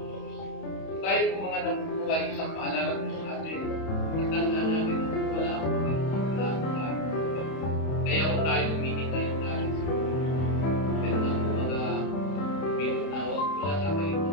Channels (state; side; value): late; right; 31 ms